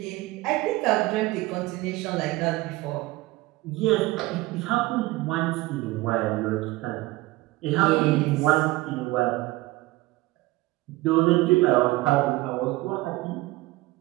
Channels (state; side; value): quieter; left; 19.9 dB